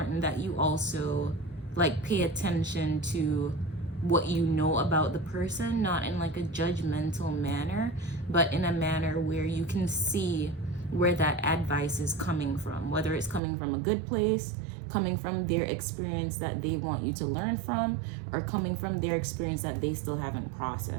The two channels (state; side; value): drops out; left; at 13.4 s